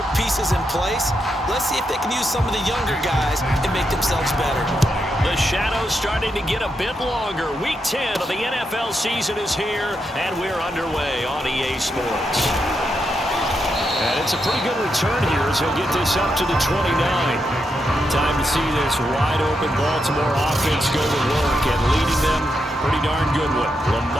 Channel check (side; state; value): both; normal; correlation 0.83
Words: pieces in place. Let's see if they can use some of the younger guys and make themselves better. The shadow's starting to get a bit longer. Week 10 of the NFL season is here, and we're underway on EA Sports. And it's a pretty good return here as he'll get this up to the 29. Time to see this wide-open Baltimore offense go to work, and leading them, pretty darn good one,